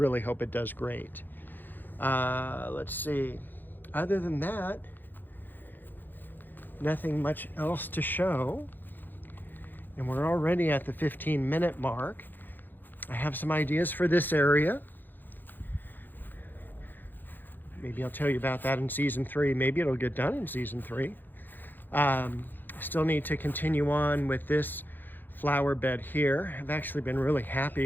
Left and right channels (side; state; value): right; late; 0.090 ms